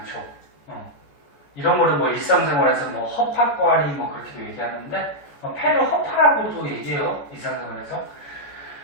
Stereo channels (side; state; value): right; late; 14 ms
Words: 이런 거는 뭐 일상생활에서 뭐 허파과리 뭐 그렇게도 얘기하는데, 폐를 허파라고도 얘기해요, 일상생활에서.